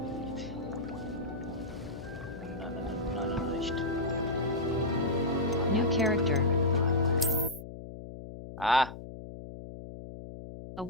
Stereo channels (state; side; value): noise; left; hum, 12 dB below the sound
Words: New character. Ah, A